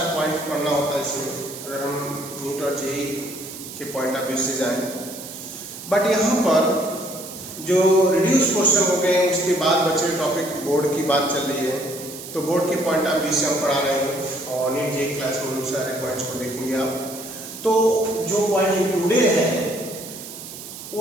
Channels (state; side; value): noise; right; hiss, 12 dB below the sound